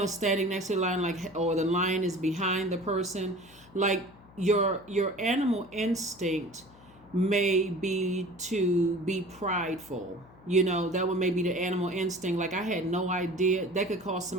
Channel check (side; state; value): left; noise; hum, 24 dB below the sound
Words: standing next to the lion, like, or the lion is behind the person. Like your animal instinct may be to be prideful. That would maybe the animal instinct. Like, I had no idea. That could cause